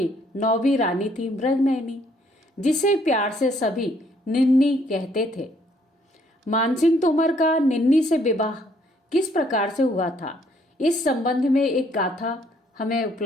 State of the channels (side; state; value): both; normal; correlation 0.66